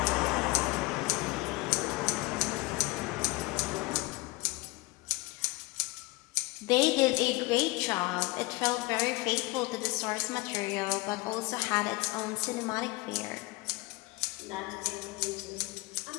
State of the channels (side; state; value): right; quieter; 23.2 dB